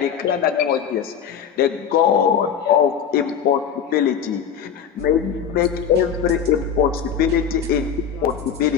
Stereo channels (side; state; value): right; quieter; 7.7 dB